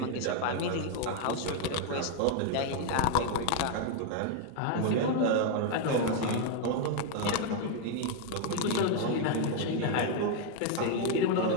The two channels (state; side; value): different; both; correlation 0.00